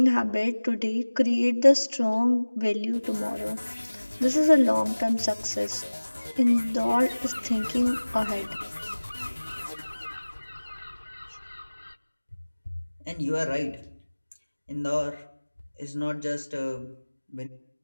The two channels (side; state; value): both; inverted; correlation -1.00